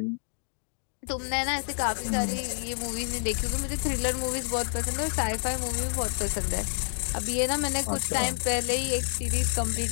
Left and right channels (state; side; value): silent; right; 59 dB below the other